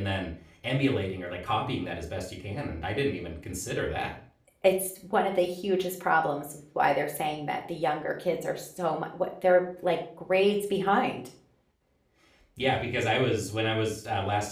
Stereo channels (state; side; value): identical; both; correlation 1.00